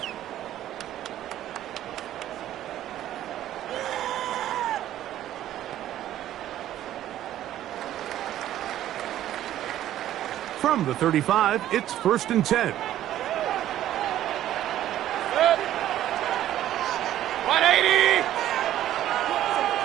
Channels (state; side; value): quieter; left; 12.7 dB